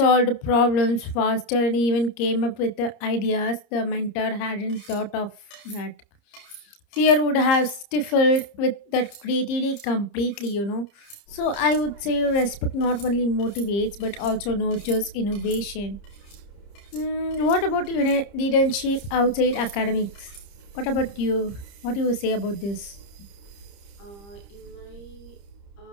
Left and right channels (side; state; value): right; late; 30 ms